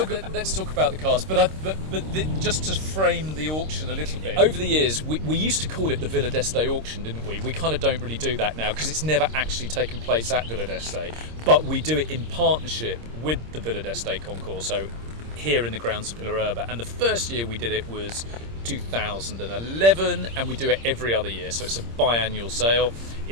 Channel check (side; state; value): left; late; 26 ms